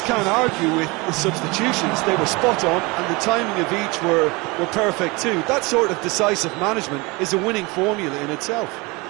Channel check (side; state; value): left; quieter; 25.6 dB